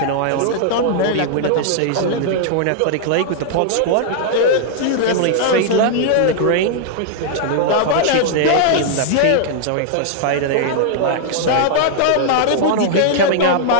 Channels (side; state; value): both; different; correlation -0.01